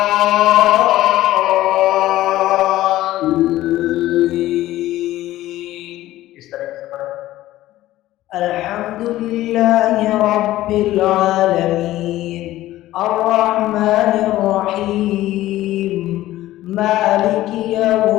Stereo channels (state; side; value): quieter; right; 15.4 dB